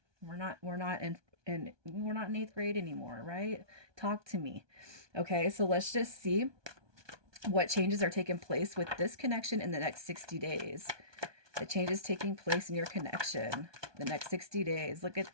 We're not in eighth grade anymore, right? Talk to me. Okay. So let's just see what changes are taking place with this connection in the next 60 days. The changes taking place in your connection the next 60 days. Look at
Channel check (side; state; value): left; late; 1.2 ms